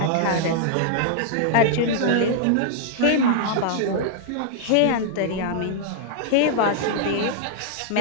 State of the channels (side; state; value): both; different; correlation -0.01